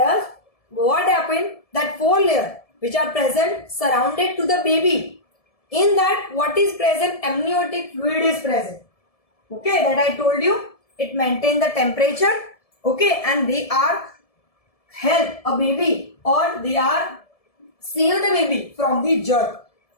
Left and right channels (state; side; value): late; right; 1.7 ms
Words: what happened? That 4 layers which are present surrounded to the baby. In that, what is present? Amniotic fluid is present. Okay, that I told you. It maintains the temperature. Okay, and they are help a baby, or they are save the baby from the germ.